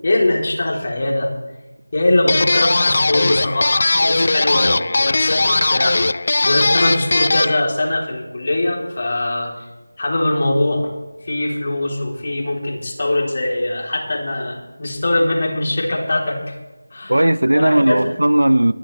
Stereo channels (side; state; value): both; inverted; correlation -0.98